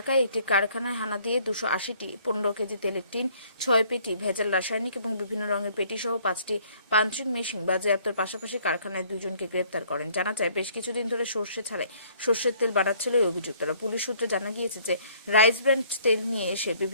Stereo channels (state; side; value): inverted; both; correlation -0.60